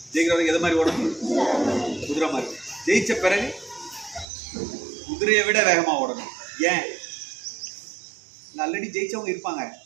ஜெயிக்கிற வரைக்கும் எதை மாதிரி ஓடணும்? குதிரை மாதிரி. ஜெயிச்ச பிறகு குதிரையை விட வேகமாக ஓடணும். ஏன்? ஆல்ரெடி ஜெயிச்சவங்க இருப்பாங்க.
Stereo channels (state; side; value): drops out; left; at 4.2 s